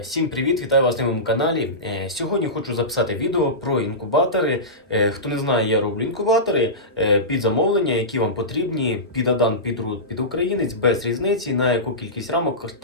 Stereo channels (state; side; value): normal; both; correlation -0.19